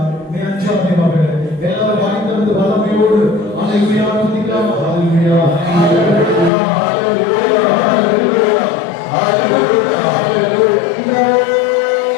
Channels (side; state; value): right; drops out; at 6.5 s